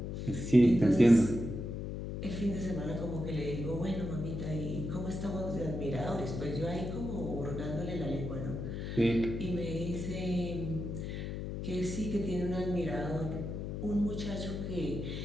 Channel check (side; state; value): left; noise; hum, 5 dB below the sound